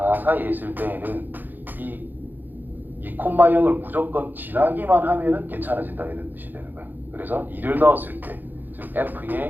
사이에 있을 때에는 이 2,0을 무조건 지나기만 하면은 괜찮아진다 이런 뜻이 되는 거야. 그래서 2를 넣었을 때, 즉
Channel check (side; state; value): left; late; 0.088 ms